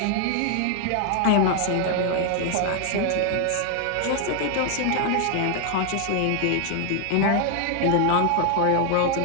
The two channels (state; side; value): different; both; correlation 0.00